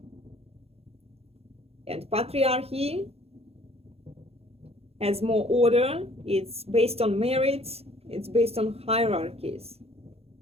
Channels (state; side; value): late; left; 0.29 ms